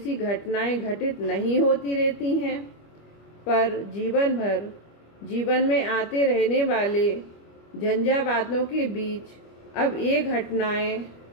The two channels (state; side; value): late; right; 25 ms